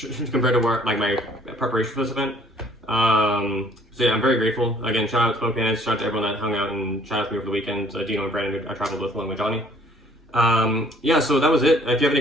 compared to where, like my preparation for this event. So yeah, I'm very grateful. Again, shout out to Smoke Bandits, shout out to everyone that hung out and chatted with me over the weekend. Dino and Brandon, I traveled with along with Johnny. Yeah, so that was it. If you have any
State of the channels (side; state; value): both; normal; correlation 0.59